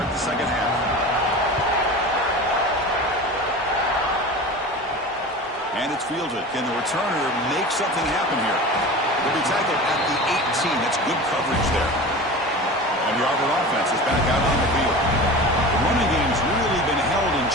the 2nd half. And it's fielded. Can the returner make something happen here? Will be tackled at the 18. That's good coverage there. And the Auburn offense is back out on the field. The running game's really been held in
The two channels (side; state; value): both; normal; correlation 0.33